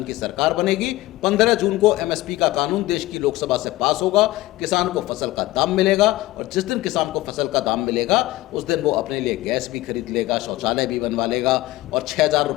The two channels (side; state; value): right; quieter; 17.7 dB